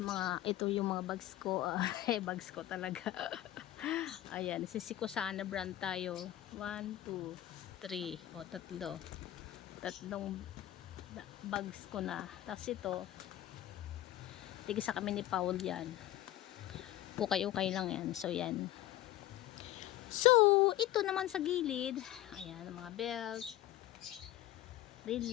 ito yung mga bags ko. Bags ko talaga. Ayan, Sisikusana brand tayo. 1, 2, 3. Tatlong bags ko na. Tapos ito, tigisa kami ni Paul yan. Ukay-ukay lang yan. So yan. So, ito naman sa gilid. Ayan, mga belt,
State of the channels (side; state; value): right; quieter; 14.2 dB